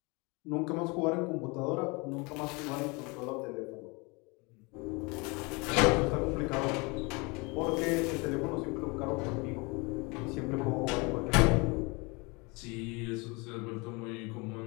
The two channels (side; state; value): right; quieter; 27.9 dB